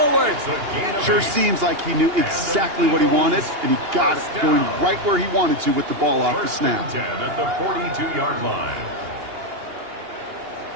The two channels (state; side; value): late; left; 2.8 ms